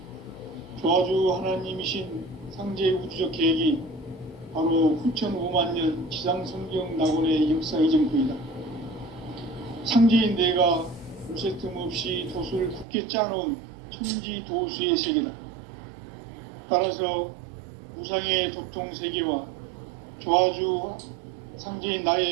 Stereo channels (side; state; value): left; drops out; at 12.9 s